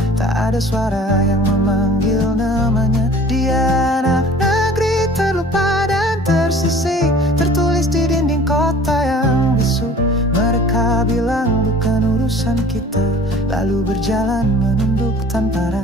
tak ada suara yang memanggil namanya. Dia anak negeri terlupa dan tersisih, tertulis di dinding kota yang bisu. Mereka bilang bukan urusan kita, lalu berjalan menunduk tanpa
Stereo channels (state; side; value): normal; both; correlation 0.48